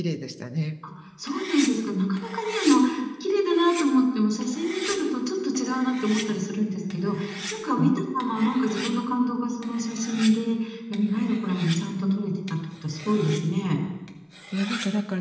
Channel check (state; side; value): identical; both; correlation 1.00